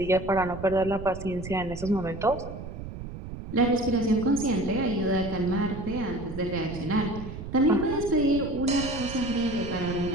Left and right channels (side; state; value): right; noise; rumble, 10 dB below the sound